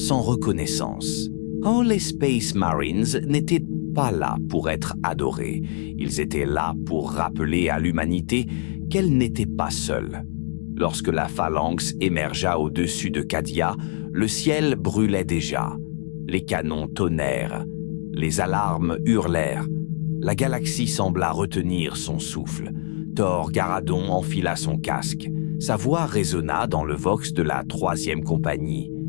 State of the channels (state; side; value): silent; right; 58 dB below the other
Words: reconnaissance. Oh, les Space Marines n'étaient pas là pour être adorés. Ils étaient là pour rappeler à l'humanité qu'elle n'était pas seule. Lorsque la phalanx émergea au-dessus de Cadia, le ciel brûlait déjà. Les canons tonnèrent. Les alarmes hurlèrent. La galaxie sembla retenir son souffle. Thor Garadon enfila son casque. Sa voix résonna dans le vox de la 3e compagnie,